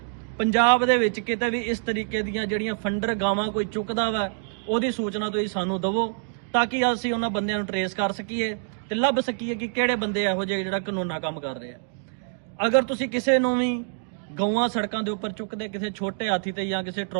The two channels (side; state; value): left; silent; digital silence